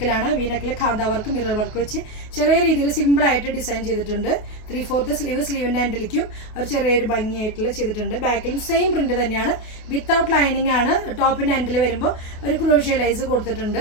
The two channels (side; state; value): right; late; 28 ms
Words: വി നെക്കിൽ ഖാന്ത വർക്ക്, മിറർ വർക്ക് വെച്ച് ചെറിയ രീതിയിൽ സിമ്പിളായിട്ട് ഡിസൈൻ ചെയ്തിട്ടുണ്ട്. 3/4 സ്ലീവ്, സ്ലീവിൻ്റെ ഹാൻഡിലേക്കും ഒരു ചെറിയൊരു ഭംഗിയായിട്ടുള്ള ചെയ്തിട്ടുണ്ട്. ബാക്കിലും സെയിം പ്രിന്റ് തന്നെയാണ്. വിത്തൗട്ട് ലൈനിങ് ആണ്. ടോപ്പിൻ്റെ ഹാൻഡിൽ വരുമ്പോൾ ഒരു ക്രോഷ്യ ലേസ്